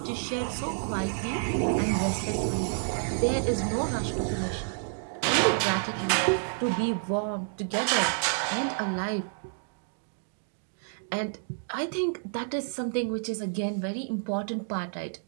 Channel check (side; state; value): left; silent; digital silence